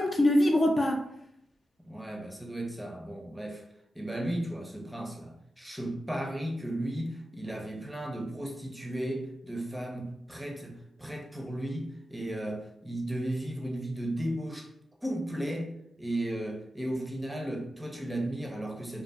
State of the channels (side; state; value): both; normal; correlation 0.92